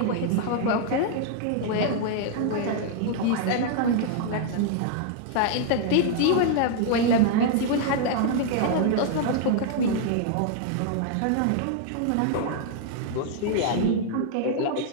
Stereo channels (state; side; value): different; both; correlation 0.00